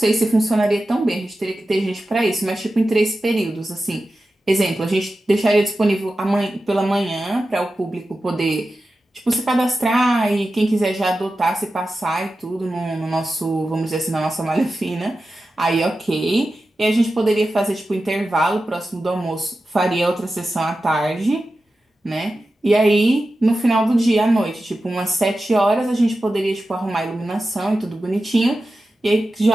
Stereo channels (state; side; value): normal; both; correlation 0.93